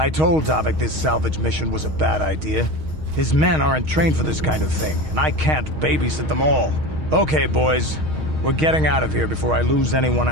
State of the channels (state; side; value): late; left; 6.4 ms